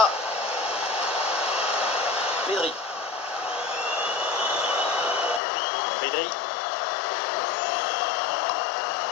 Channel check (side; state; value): right; drops out; at 5.4 s